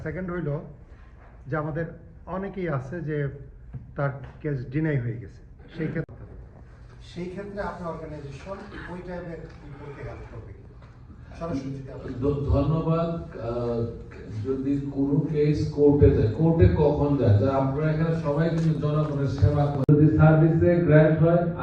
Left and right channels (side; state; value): both; identical; correlation 1.00